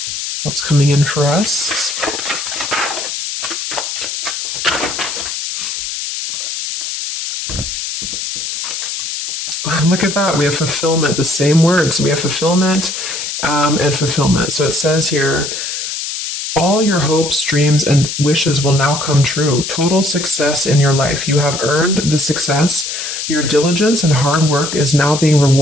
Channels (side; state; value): left; noise; hiss, 5 dB below the sound